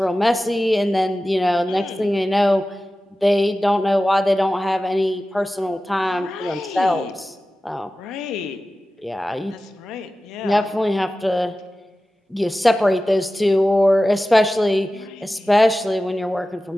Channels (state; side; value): normal; both; correlation 0.95